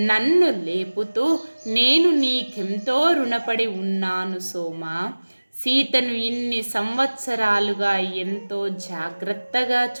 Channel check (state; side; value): inverted; both; correlation -1.00